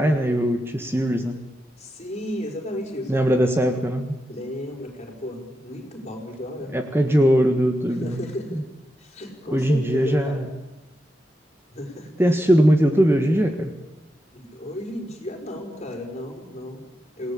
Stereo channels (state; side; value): normal; both; correlation 0.87